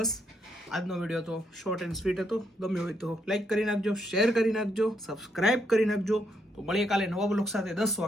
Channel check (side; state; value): both; normal; correlation 0.76